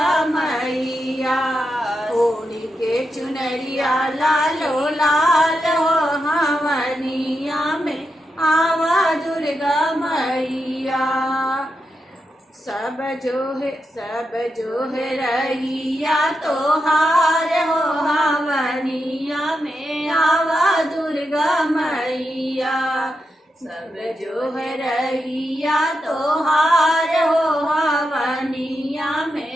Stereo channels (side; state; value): both; normal; correlation 0.86